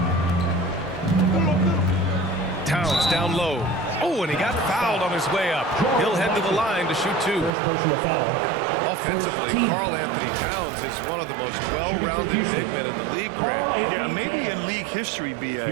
Towns down low. Oh, and he got fouled on his way up. He'll head to the line to shoot 2. Offensively, Karl Anthony Towns is one of the most well-rounded big men in the league, Grant. Yeah, maybe in league history, B.A.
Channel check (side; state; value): left; drops out; at 7.5 s